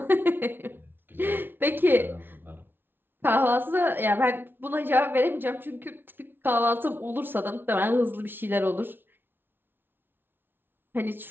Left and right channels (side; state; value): left; late; 0.10 ms